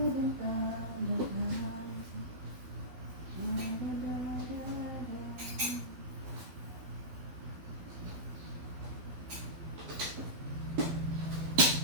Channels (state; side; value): late; left; 12 ms